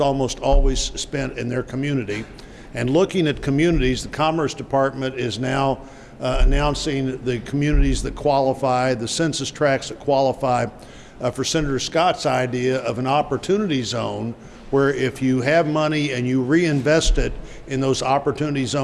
always spent in their community. And looking at communities, the Commerce Department is now announcing the communities that qualify, the census tracts that qualify for Senator Scott's idea of an opportunity zone, where if you have money and you reinvest it in those opportunity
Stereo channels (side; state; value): both; identical; correlation 1.00